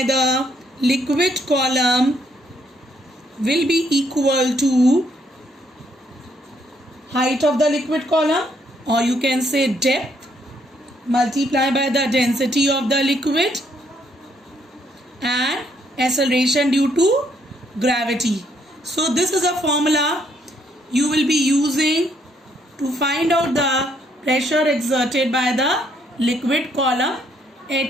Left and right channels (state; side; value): normal; both; correlation 0.71